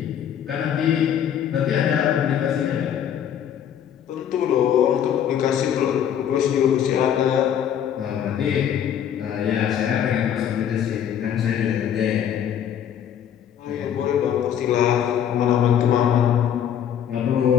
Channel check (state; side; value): quieter; right; 9.3 dB